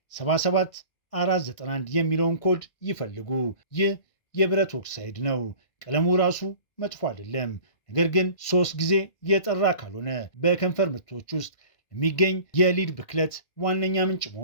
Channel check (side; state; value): right; late; 1.6 ms